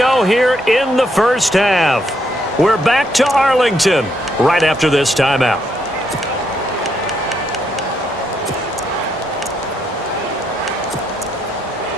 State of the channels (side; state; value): both; normal; correlation 0.76